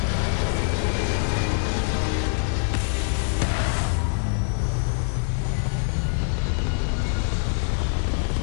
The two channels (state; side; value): silent; right; digital silence